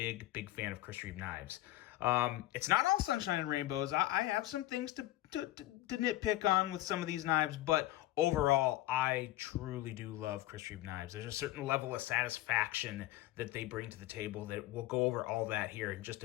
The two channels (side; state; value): right; quieter; 15.9 dB